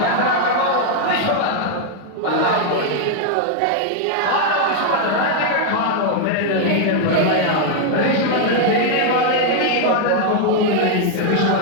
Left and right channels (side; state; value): both; different; correlation 0.00